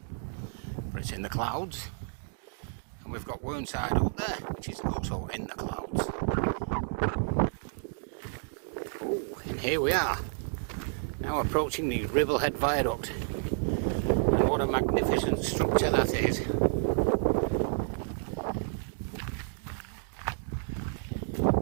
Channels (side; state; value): left; silent; digital silence